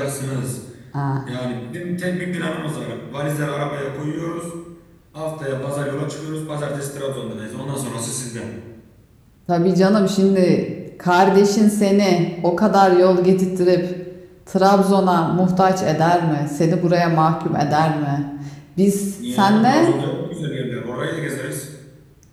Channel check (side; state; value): both; identical; correlation 1.00